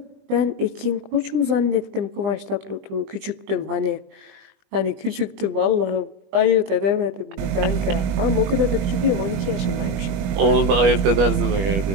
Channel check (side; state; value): left; late; 21 ms